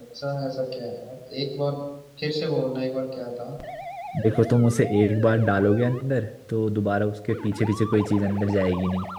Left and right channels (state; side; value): identical; both; correlation 1.00